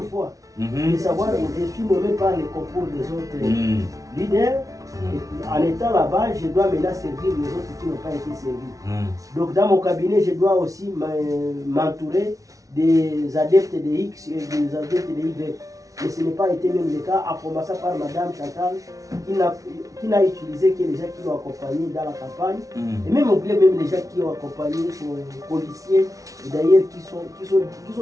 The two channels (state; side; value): late; left; 0.17 ms